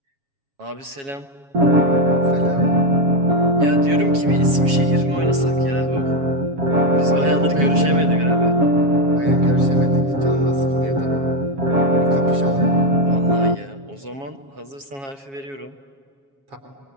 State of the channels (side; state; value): left; late; 7.3 ms